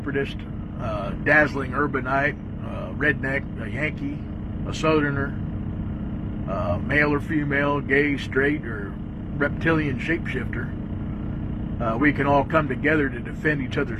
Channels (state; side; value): identical; both; correlation 1.00